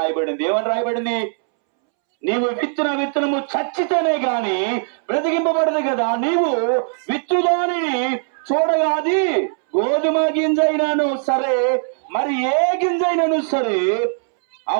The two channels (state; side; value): silent; left; 66 dB below the other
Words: ఏమని రాయబడింది? నీవు విత్తిన విత్తనము చచ్చితేనే గాని బ్రతికింపబడదు కదా. నీవు విత్తుదానిని చూడగా అది గోధుమ గింజైనాను సరే, మరి ఏ గింజైనాను సరే, ఆ